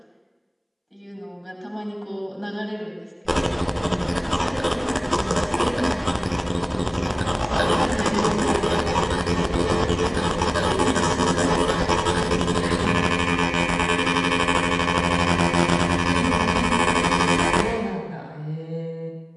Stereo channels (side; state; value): both; identical; correlation 1.00